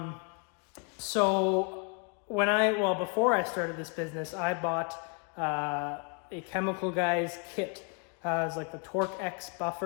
So before I started this business, I bought a Chemical Guys kit. It's like the Torque X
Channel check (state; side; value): quieter; right; 35.9 dB